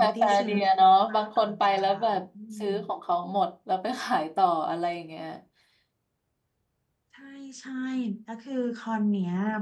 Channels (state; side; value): identical; both; correlation 1.00